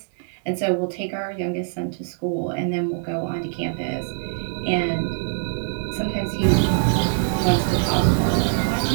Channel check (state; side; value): silent; left; 60 dB below the other